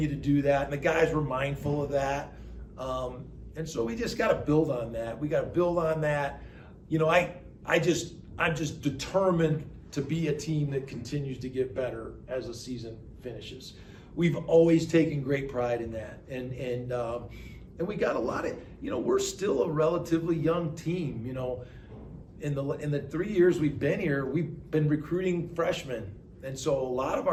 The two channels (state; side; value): identical; both; correlation 1.00